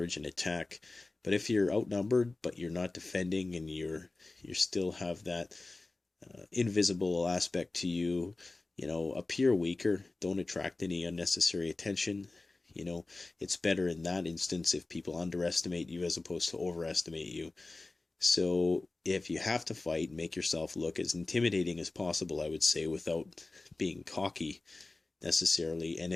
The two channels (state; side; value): quieter; right; 3.2 dB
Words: an attack. But if you're outnumbered but you're not defending, and you still have that invisible aspect to you, appear weaker. Don't attract any unnecessary attention. It's better in that instance if people underestimate you as opposed to overestimate you. So if you have to fight, make yourself look as intimidating as possible, I would say, without being cocky necessarily. And